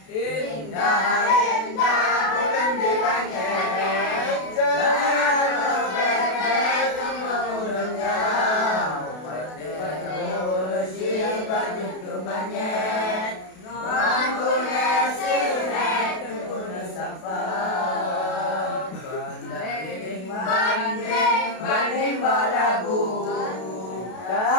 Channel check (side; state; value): right; late; 32 ms